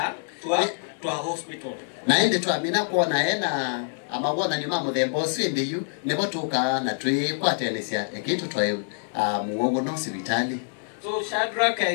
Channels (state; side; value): silent; right; digital silence